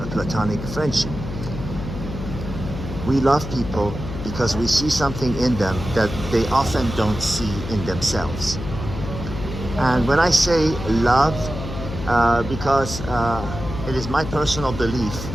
platonic friendship. We love people because we see something in them that they often don't see in themselves. And when I say love, because it is my personal belief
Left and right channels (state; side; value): noise; left; hum, 8 dB below the sound